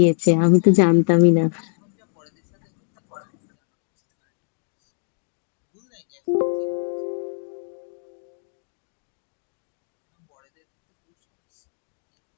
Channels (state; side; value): silent; right; digital silence